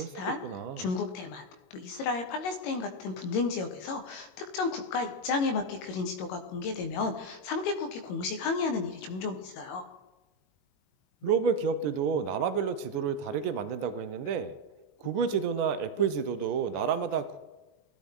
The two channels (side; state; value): right; late; 22 ms